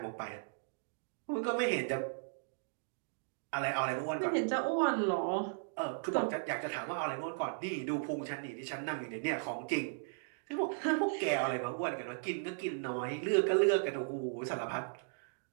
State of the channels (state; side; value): silent; left; digital silence